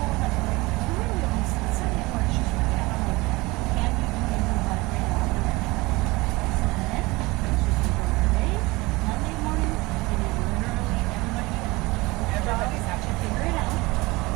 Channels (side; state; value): left; quieter; 22.4 dB